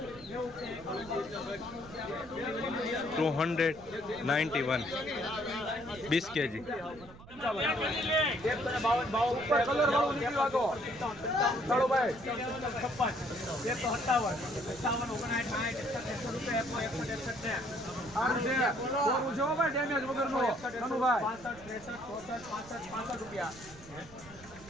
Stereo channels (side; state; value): right; noise; rumble, 19 dB below the sound